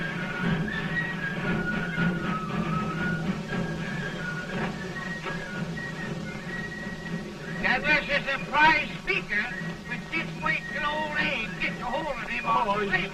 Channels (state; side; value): identical; both; correlation 1.00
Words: That was a surprise speaker, but just wait till old Abe gets a hold of him on slavery.